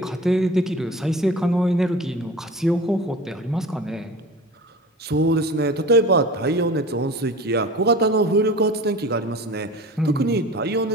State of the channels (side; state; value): both; normal; correlation 0.37